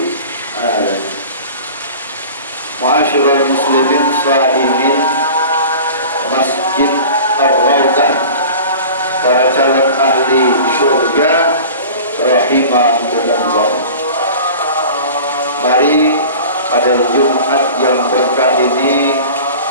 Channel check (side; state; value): both; inverted; correlation -0.39